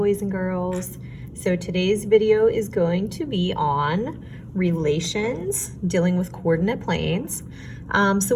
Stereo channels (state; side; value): identical; both; correlation 1.00